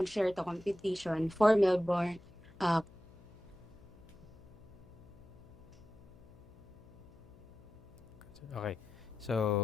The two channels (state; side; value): noise; left; hum, 22 dB below the sound